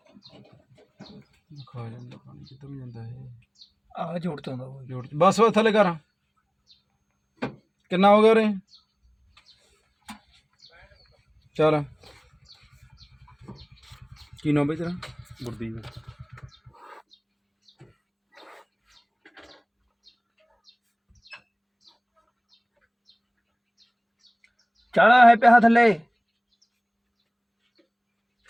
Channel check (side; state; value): both; identical; correlation 1.00